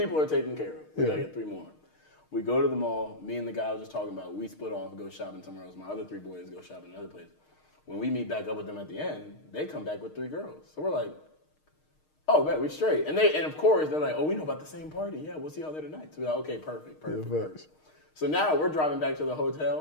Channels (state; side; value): late; right; 6.5 ms